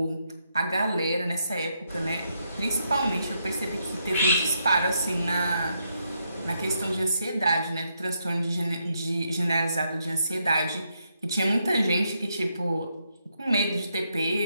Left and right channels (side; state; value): both; inverted; correlation -0.79